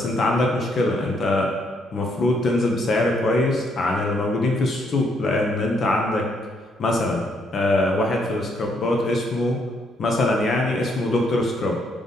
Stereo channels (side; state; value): both; normal; correlation 0.72